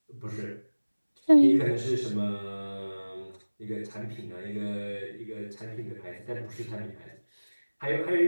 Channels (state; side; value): inverted; both; correlation -1.00